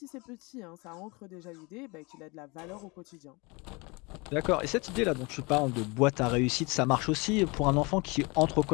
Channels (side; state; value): right; quieter; 27.7 dB